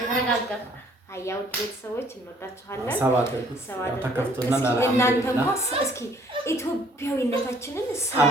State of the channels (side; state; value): both; normal; correlation 0.60